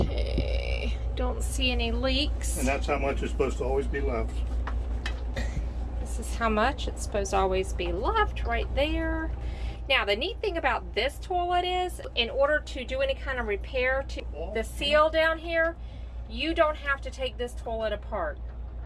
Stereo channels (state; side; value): identical; both; correlation 1.00